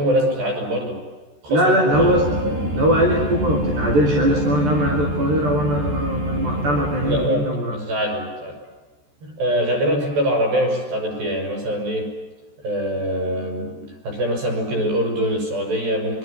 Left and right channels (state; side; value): late; left; 14 ms